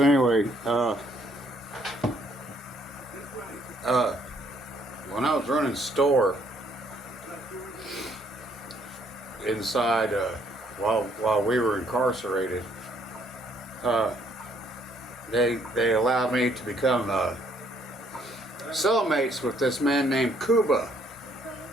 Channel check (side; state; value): both; normal; correlation 0.67